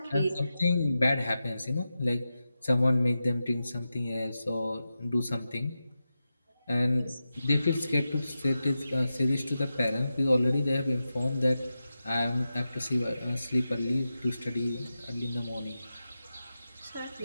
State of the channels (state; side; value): inverted; both; correlation -0.91